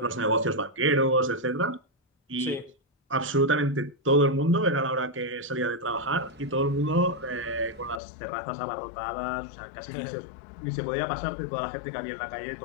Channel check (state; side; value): drops out; right; at 8.0 s